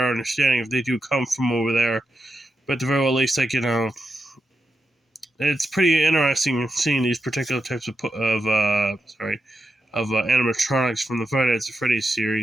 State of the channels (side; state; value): both; normal; correlation 0.87